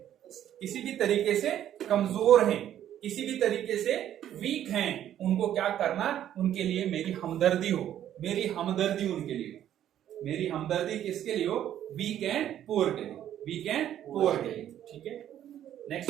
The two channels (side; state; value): left; quieter; 11.1 dB